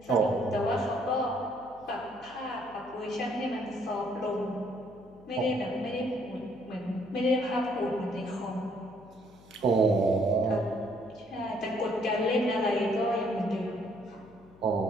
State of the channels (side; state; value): left; noise; hum, 25 dB below the sound